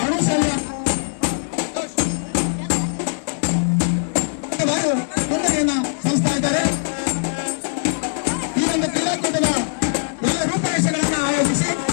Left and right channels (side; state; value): right; silent; digital silence